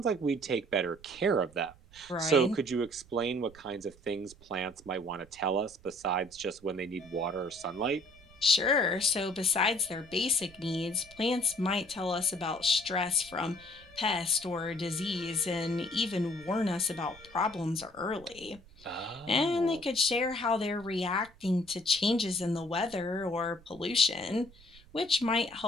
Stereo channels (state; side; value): noise; right; rumble, 24 dB below the sound